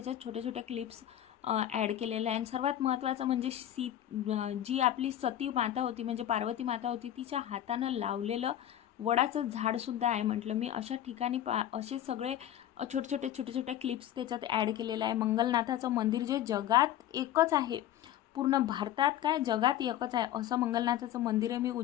छोट्या छोट्या क्लिप्स ॲड केलेलं आहे. आणि सर्वात महत्त्वाचं म्हणजे जी आपली सती माता होती, म्हणजे पार्वती माता होती, तिच्या हातानं लावलेलं वडाचं झाडसुद्धा आहे. म्हटलं मी अशा ठिकाणी असे सगळे छोटे छोटे क्लिप्स त्याच्यात ॲड केलेलं आहे. मंगलनाथाचं मंदिर जे जगात एकच आहे, पूर्ण भारतात काय जगात एकच आहे असं मंगलनाथाचं मंदिर आहे. मी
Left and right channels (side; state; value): right; quieter; 11.9 dB